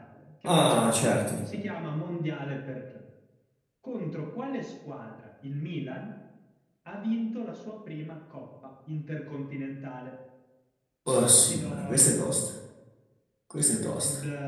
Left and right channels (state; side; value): identical; both; correlation 1.00